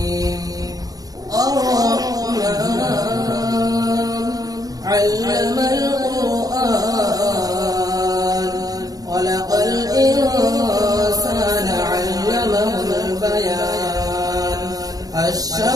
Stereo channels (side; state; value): left; late; 0.18 ms